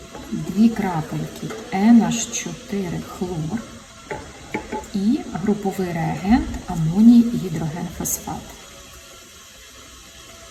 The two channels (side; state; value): both; identical; correlation 1.00